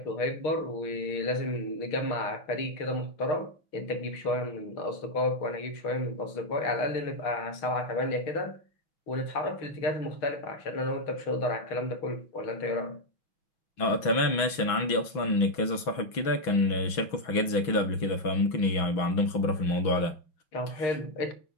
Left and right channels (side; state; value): right; late; 6.1 ms